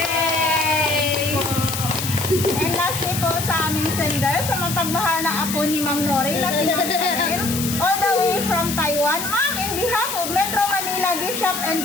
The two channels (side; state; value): left; noise; hiss, 5 dB below the sound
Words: And lastly po sa aming sender, sa mapagmahal na apo ni Ma'am Nori na si Ma'am Chanel, all the way from Taiwan. Ma'am, in behalf of Metro Manila Gift Shop and